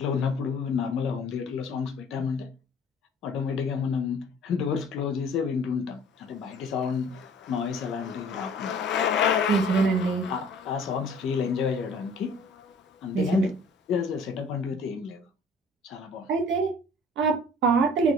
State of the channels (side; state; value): both; normal; correlation 0.50